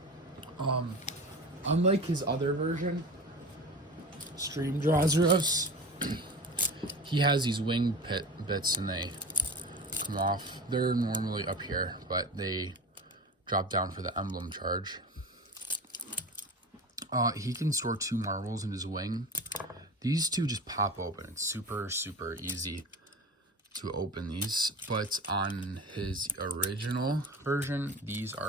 Unlike his other version, Stream Drazeros, he has these wing bits and they come off. They're normally up here, but they drop down for the emblem charge. He can store 2 marbles in his wing. These 2 just pop open. It's super easy to open these, but on his original version, these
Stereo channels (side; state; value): both; normal; correlation 0.33